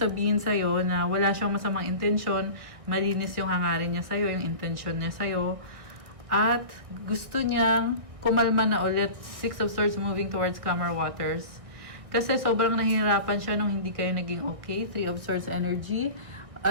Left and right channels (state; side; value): late; left; 1.6 ms